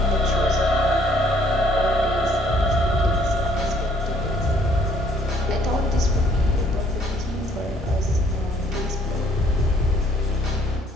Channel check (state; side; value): normal; both; correlation 0.63